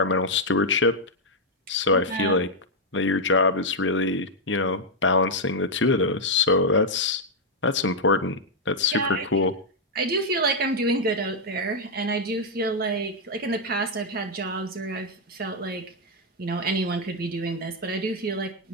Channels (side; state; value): both; normal; correlation -0.02